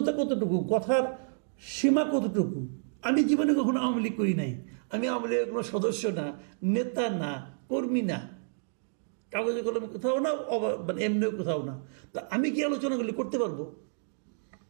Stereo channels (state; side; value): silent; left; digital silence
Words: কতটুকু, কথার সীমা কতটুকু। আমি জীবনে কখনো আওয়ামী লীগ করি নাই, আমি আওয়ামী লীগের কোনো সদস্য না, নেতা না, কর্মী না, কাগজে কলমে কোথাও না, মানে এমনিও কোথাও না, তা আমি কি আলোচনাগুলি করতে পারবো?